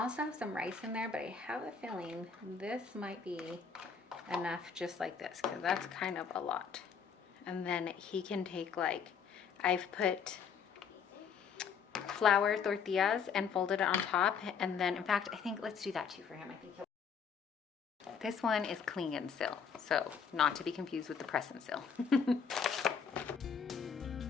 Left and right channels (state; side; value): quieter; right; 6.4 dB